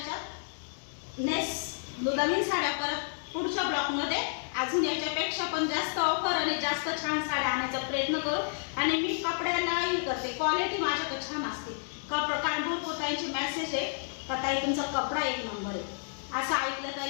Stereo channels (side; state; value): right; silent; digital silence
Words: नवीन साड्या परत पुढच्या ब्लॉकमध्ये अजून याच्यापेक्षा पण जास्त ऑफर आणि जास्त छान साड्या आणायचा प्रयत्न करू. आणि मी कपड्यालाही करते, क्वालिटी माझ्याकडे छान असते. कारण भरपूर ताईंचे मेसेज आहे का ताई तुमचा कपडा एक नंबर आहे. असं ऐकलं